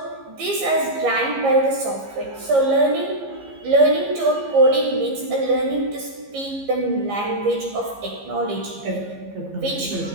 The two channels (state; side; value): late; left; 15 ms